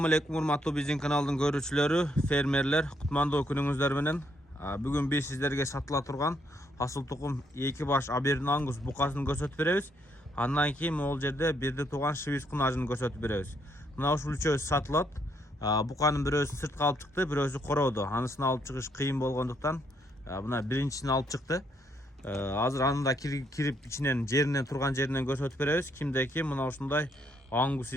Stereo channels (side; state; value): both; normal; correlation 0.73